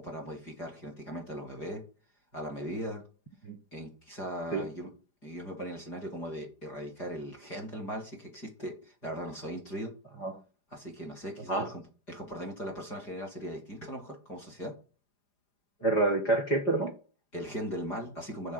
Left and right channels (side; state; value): right; late; 4.9 ms